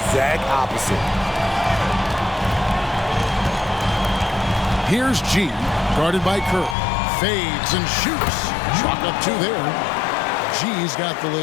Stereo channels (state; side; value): drops out; right; at 6.8 s